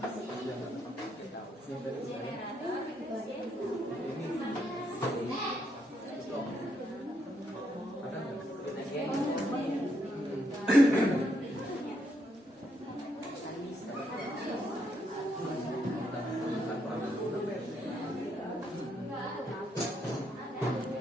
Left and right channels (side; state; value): both; normal; correlation 0.76